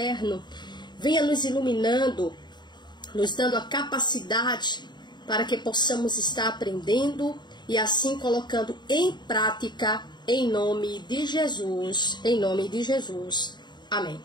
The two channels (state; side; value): late; right; 0.21 ms